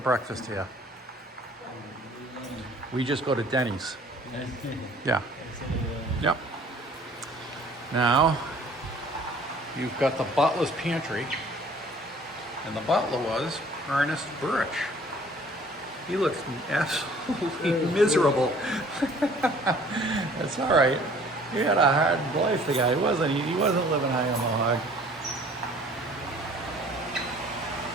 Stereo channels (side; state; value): both; normal; correlation 0.53